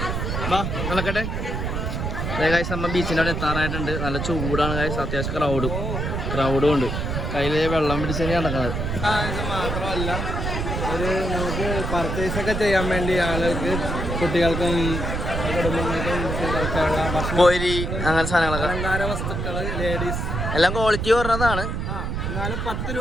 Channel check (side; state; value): right; noise; rumble, 2 dB below the sound